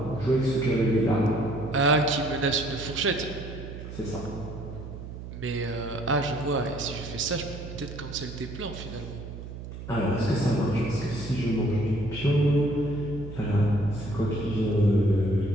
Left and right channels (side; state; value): right; noise; hum, 10 dB below the sound